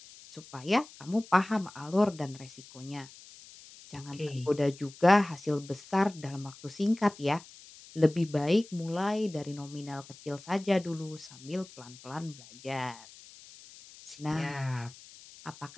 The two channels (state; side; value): noise; left; hiss, 20 dB below the sound